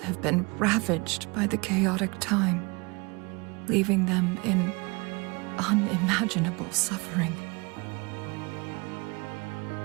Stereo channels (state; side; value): quieter; left; 27.8 dB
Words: been ravaged by the chaotic time, leaving them in unimaginable suffering.